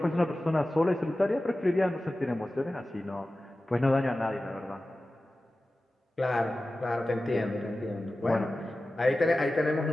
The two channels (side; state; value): both; normal; correlation 0.95